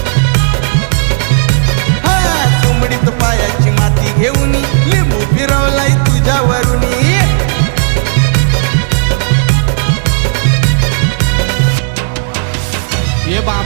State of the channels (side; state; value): left; silent; digital silence